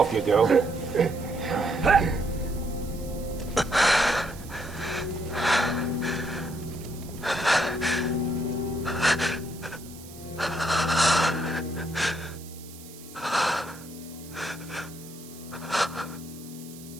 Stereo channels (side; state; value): right; noise; hiss, 18 dB below the sound